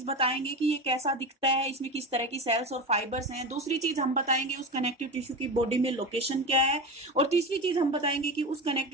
बताएंगे कि ये कैसा दिखता है, इसमें किस तरह की सेल्स और फाइबर्स हैं। दूसरी चीज हम बताएंगे उस कनेक्टिव टिश्यू की बॉडी में लोकेशन क्या है, और तीसरी चीज हम बताएंगे कि उस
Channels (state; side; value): normal; both; correlation 0.24